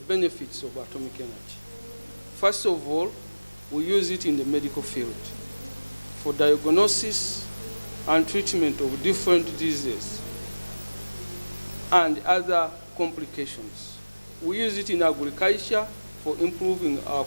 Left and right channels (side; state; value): both; inverted; correlation -1.00